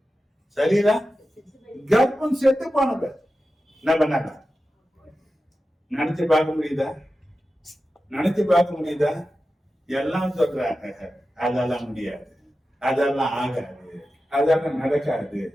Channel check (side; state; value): both; normal; correlation 0.93